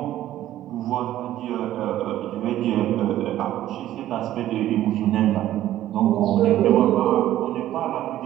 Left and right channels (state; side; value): quieter; left; 13.3 dB